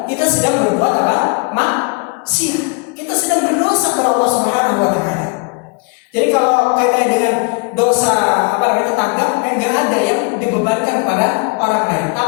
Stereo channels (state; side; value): quieter; right; 32.8 dB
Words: kita sedang berbuat apa? Maksiat. Kita sedang berdosa kepada Allah Subhanahu wa taala. Jadi kalau kaitannya dengan dosa tetangga, enggak ada yang dibebankan kepada orang lain.